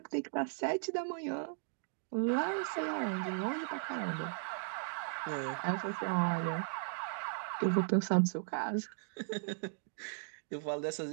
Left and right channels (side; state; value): left; silent; digital silence